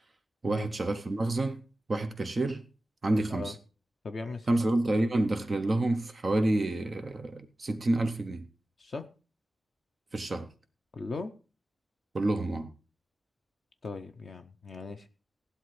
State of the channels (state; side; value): normal; both; correlation 0.95